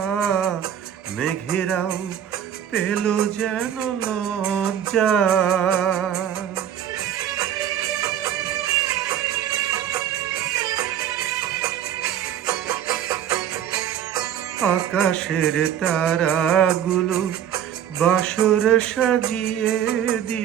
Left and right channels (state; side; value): quieter; left; 10.0 dB